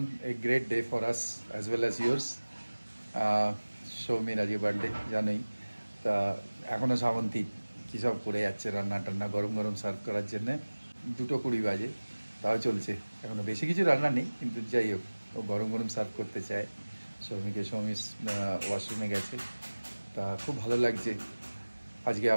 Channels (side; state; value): both; inverted; correlation -1.00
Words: A great day for us as well as yours. Soumir আজকে বার্থডে জানোই, তো তা এখনো শ্রাবন্তী কী সব করে যাচ্ছে, রান্না টান্না গরম গরম সার্ভ করার জন্যে। 2:20 বাজে, তাও চলছে। এখনো বেশি কিছু রান্না নেই, কিন্তু যাই হোক ও গরম গরম সার্ভ করতে চায়। সৌমিক ওয়াশরুমে গেছে, তা খুব ভালো লাগছে। আজকে